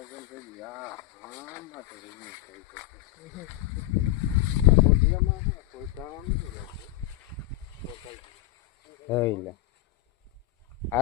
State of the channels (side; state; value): right; quieter; 15.0 dB